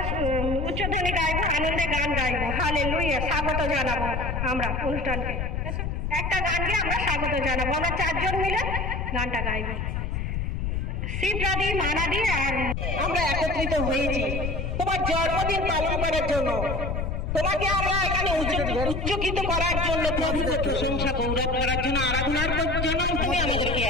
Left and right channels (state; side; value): noise; left; rumble, 2 dB below the sound